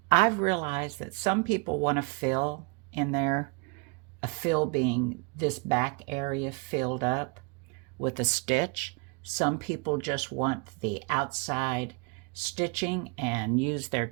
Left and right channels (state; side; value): quieter; left; 31.3 dB